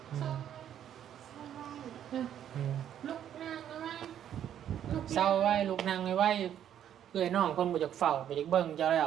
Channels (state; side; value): quieter; left; 10.2 dB